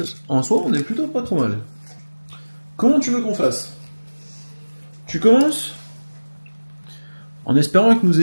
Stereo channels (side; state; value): both; inverted; correlation -1.00